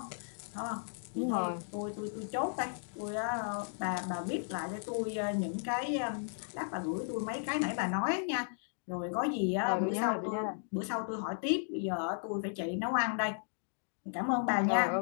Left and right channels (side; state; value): right; silent; digital silence